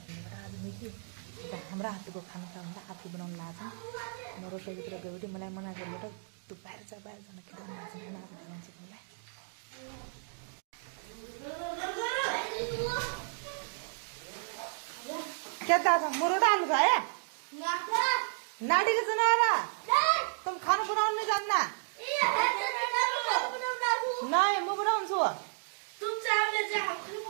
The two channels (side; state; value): left; silent; digital silence